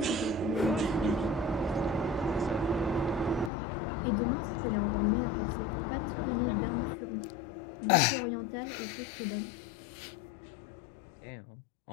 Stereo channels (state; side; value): drops out; right; at 3.5 s